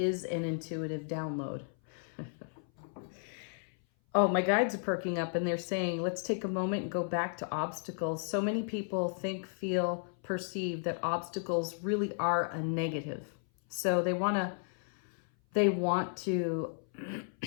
an intuitive download. Oh, my guides are perking up and they're saying, let's take a moment and go back to obstacles. So many people think, feel, perceive that obstacles really are a negative. So they want to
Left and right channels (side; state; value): right; silent; 55 dB below the other